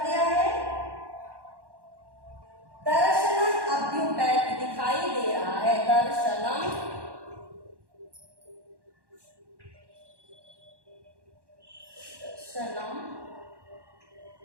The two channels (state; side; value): late; left; 1.1 ms